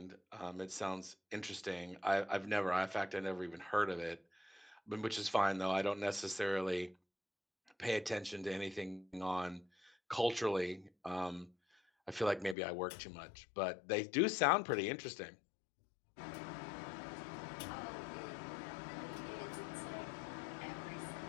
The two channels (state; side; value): drops out; right; at 12.6 s